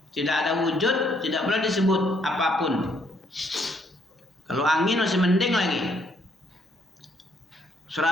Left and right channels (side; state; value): both; normal; correlation 0.69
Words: Tidak ada wujud, tidak pula disebut apapun. Kalau angin masih mending lagi.